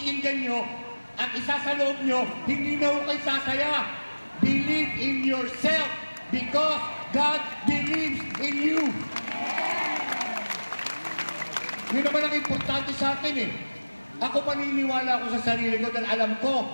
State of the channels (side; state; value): both; inverted; correlation -1.00